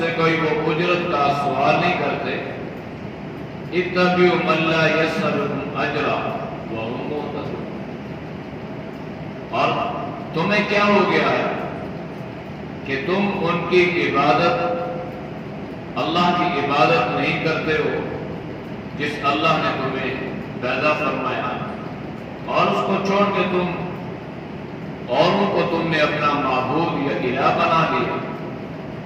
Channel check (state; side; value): identical; both; correlation 1.00